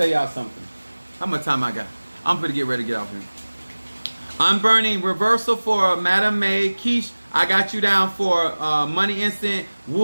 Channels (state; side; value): inverted; both; correlation -1.00